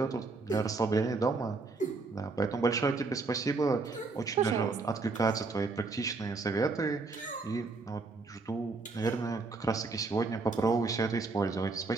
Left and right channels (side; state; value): left; quieter; 3.8 dB